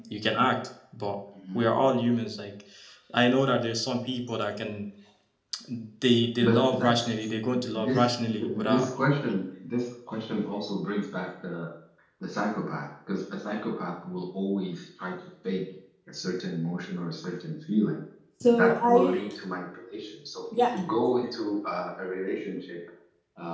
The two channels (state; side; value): identical; both; correlation 1.00